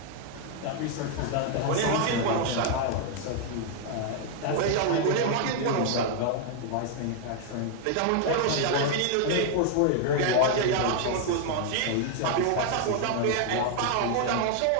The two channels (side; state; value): both; different; correlation 0.00